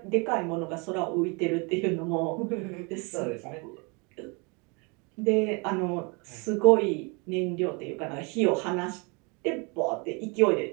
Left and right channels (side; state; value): left; quieter; 31.2 dB